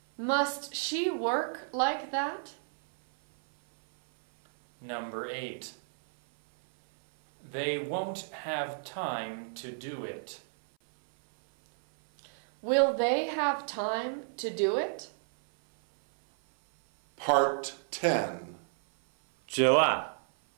Must she work like that? Number 8. They won't have time to do it. Will they have time to do it? Part 10. Chữ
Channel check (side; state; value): left; silent; 57 dB below the other